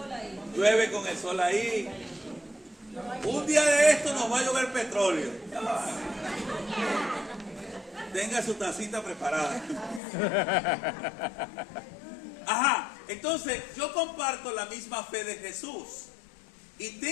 Llueve con el sol ahí. Un día de esto nos va a llover petróleo. Tenga su tacita preparada. Ajá, entonces yo comparto la misma fe de Jesús y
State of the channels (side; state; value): right; drops out; at 10.0 s